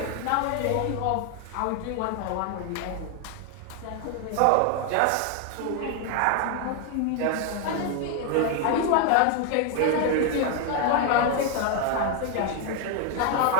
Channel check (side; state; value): both; different; correlation 0.01